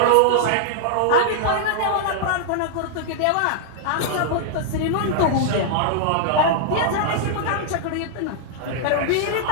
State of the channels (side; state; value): both; different; correlation -0.01